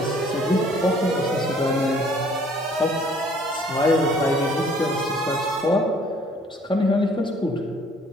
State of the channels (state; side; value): normal; both; correlation 0.58